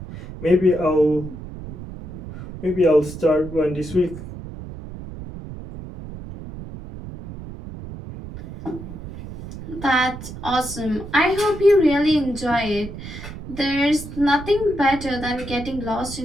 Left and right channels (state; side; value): noise; right; rumble, 12 dB below the sound